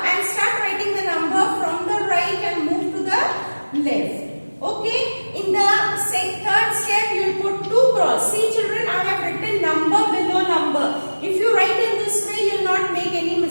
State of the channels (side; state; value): both; inverted; correlation -1.00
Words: start writing the number from the right and move to the left. Okay? In the third step, you will put 2 cross. See children, I have written number below number. If you write in this way, you will not make any